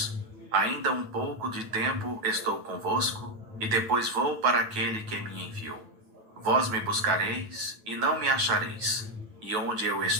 Ainda um pouco de tempo estou convosco, e depois vou para aquele que me enviou. Vós me buscareis, e não me achareis, e onde eu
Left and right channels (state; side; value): late; left; 9.2 ms